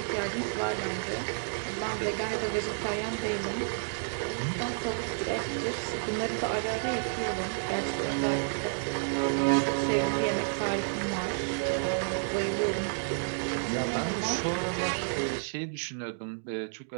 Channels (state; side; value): silent; left; digital silence